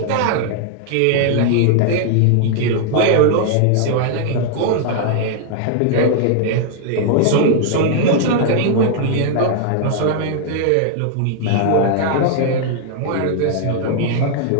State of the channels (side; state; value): both; different; correlation 0.00